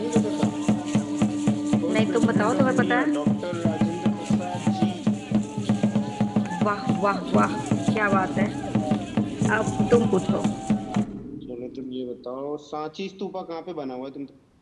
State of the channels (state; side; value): identical; both; correlation 1.00